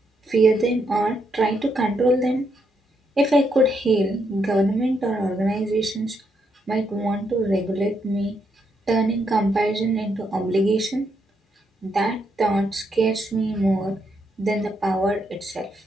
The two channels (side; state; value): both; normal; correlation 0.78